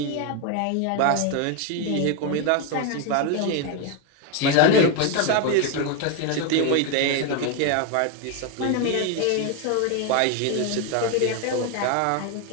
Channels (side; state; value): both; different; correlation 0.01